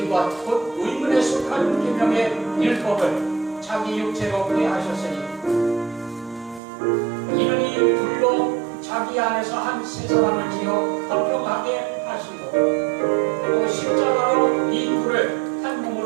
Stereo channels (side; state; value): left; drops out; at 6.6 s